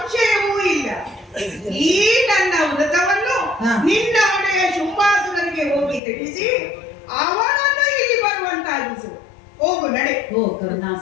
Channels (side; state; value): right; drops out; at 6.0 s